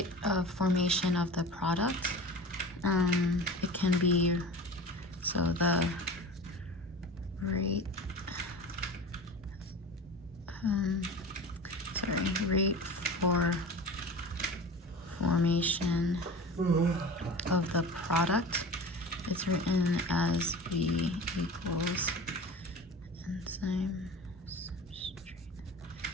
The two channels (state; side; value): normal; both; correlation 0.35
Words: of formation of the product, it can be, so the rate, rate for formation of the product, it's written as V equals enzyme substrate